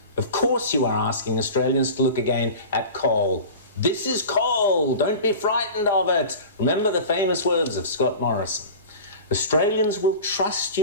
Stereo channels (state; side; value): inverted; both; correlation -0.35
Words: Of course you are asking Australians to look again at coal. This is coal. Don't be frightened of it. Remember the famous words of Scott Morrison. Australians will trust